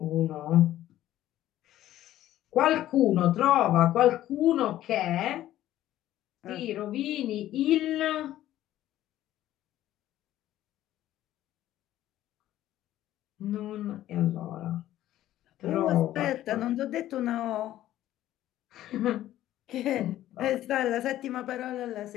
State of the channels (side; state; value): right; quieter; 13.5 dB